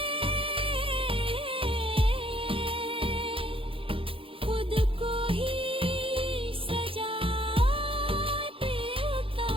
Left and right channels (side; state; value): left; late; 0.26 ms